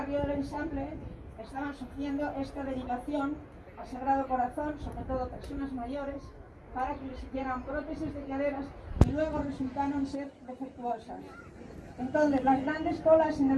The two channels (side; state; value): both; identical; correlation 1.00